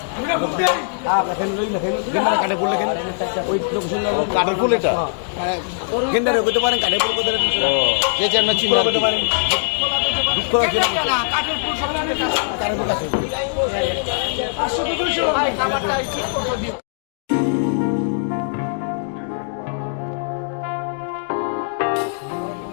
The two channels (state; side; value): silent; right; digital silence